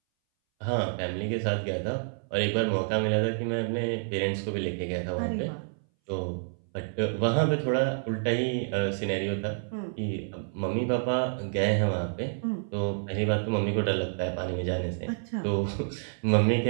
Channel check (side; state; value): left; silent; 59 dB below the other